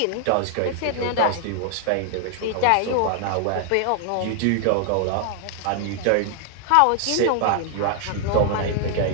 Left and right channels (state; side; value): different; both; correlation 0.00